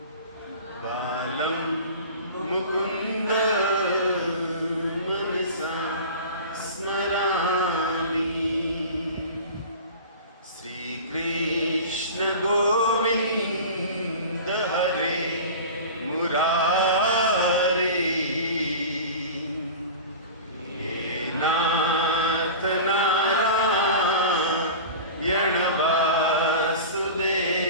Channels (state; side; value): inverted; both; correlation -0.35